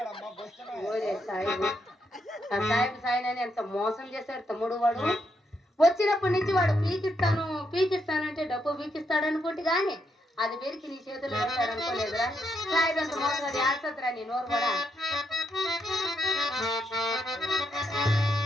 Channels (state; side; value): normal; both; correlation 0.79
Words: ఓరే సాయిబు, ఆ సాయిబు సాయినని ఎంత మోసం చేశాడు తమ్ముడు. వాడు వచ్చినప్పటి నుంచి వాడు పీకిస్తానంటే డబ్బు పీకిస్తాడు అనుకుంటే గాని అది పెరికి నీ చేతులు పెడతాడు అనుకోలేదురా. సాయిబు అంత మోసం అది ఆడుతుందిరా నీ నోరు కూడా.